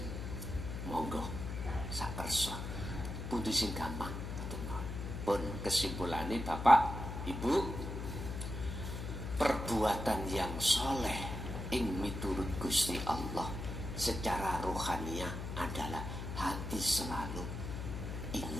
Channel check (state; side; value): noise; left; hum, 6 dB below the sound